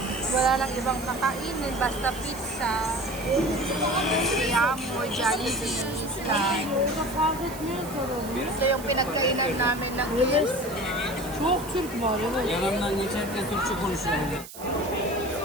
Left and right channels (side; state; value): right; noise; hiss, 15 dB below the sound